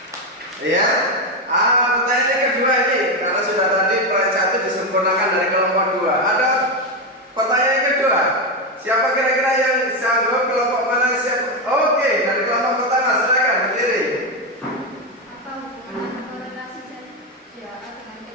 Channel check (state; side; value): normal; both; correlation 0.09